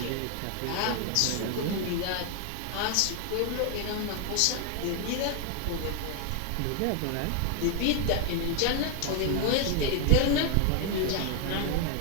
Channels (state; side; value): different; both; correlation 0.01